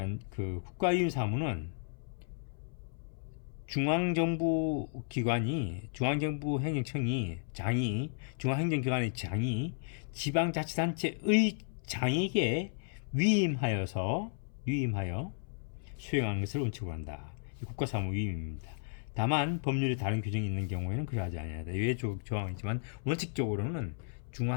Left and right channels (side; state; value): right; silent; 55 dB below the other